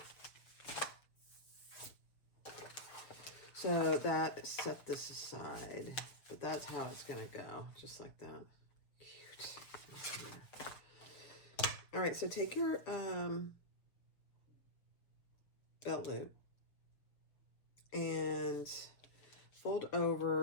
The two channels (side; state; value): right; late; 6.5 ms